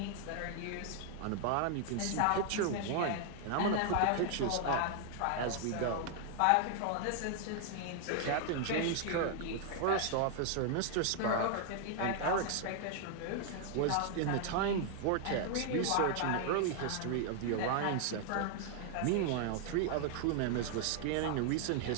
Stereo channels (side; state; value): both; different; correlation 0.00